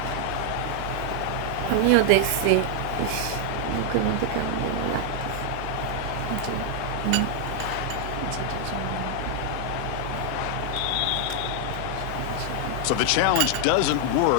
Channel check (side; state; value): both; different; correlation 0.00